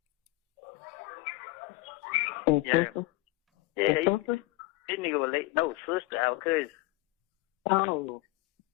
Yeah. Yeah, this nigga was late. No, sister, our cousin. Oh.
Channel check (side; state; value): right; quieter; 19.8 dB